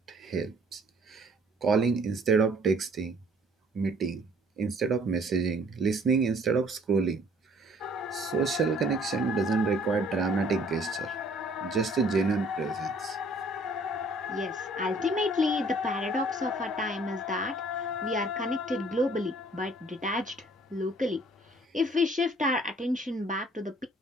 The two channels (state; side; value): normal; both; correlation 0.58